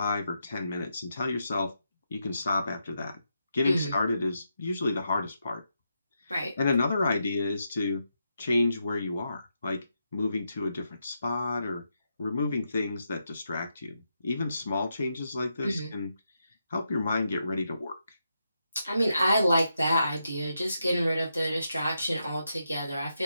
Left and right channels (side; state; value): both; inverted; correlation -0.83